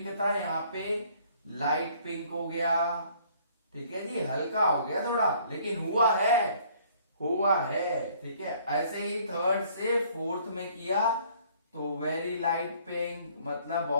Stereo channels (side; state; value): both; inverted; correlation -0.59